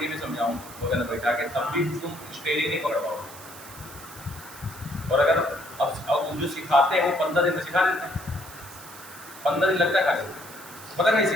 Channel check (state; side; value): noise; right; hiss, 16 dB below the sound